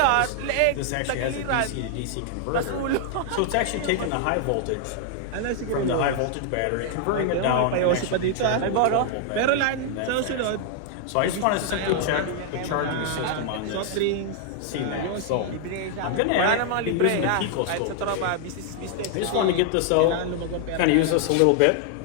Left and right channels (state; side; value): different; both; correlation 0.00